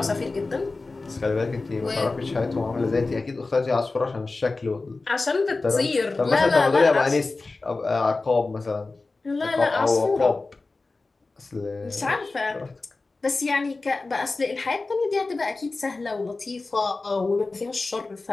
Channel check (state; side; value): quieter; right; 3.6 dB